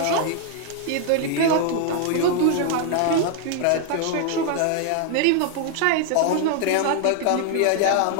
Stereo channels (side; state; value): both; different; correlation 0.00